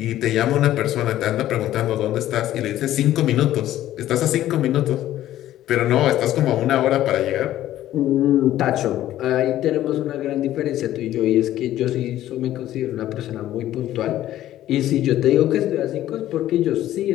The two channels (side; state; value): right; quieter; 13.4 dB